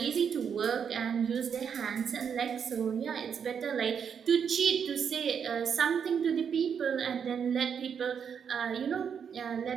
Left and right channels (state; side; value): quieter; left; 7.3 dB